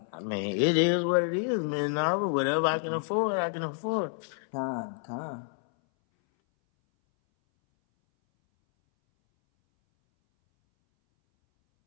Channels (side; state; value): right; silent; 59 dB below the other